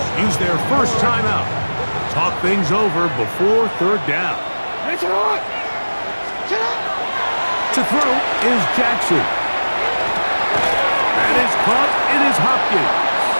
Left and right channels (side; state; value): both; inverted; correlation -1.00